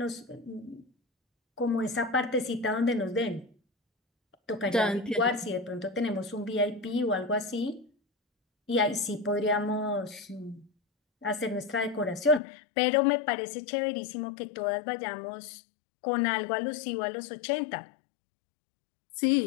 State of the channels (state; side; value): drops out; right; at 12.4 s